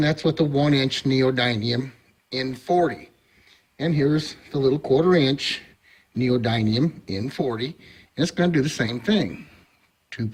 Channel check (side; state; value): both; identical; correlation 1.00